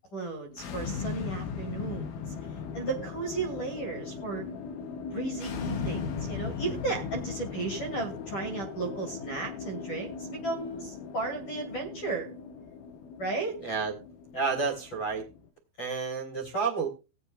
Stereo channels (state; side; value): late; right; 12 ms